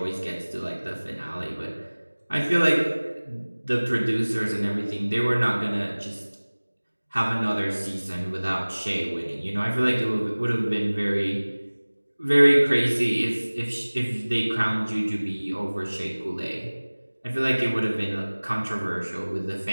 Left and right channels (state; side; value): inverted; both; correlation -1.00